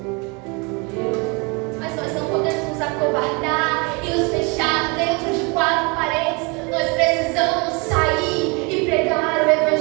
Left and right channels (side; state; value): left; quieter; 30.1 dB